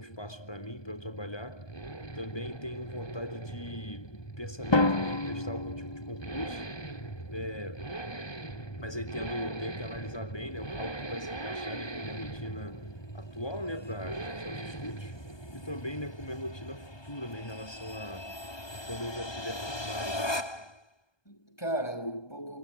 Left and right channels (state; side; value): late; right; 1.2 ms